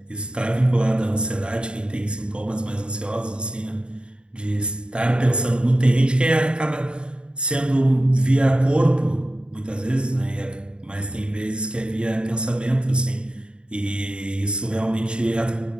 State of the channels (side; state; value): left; late; 0.052 ms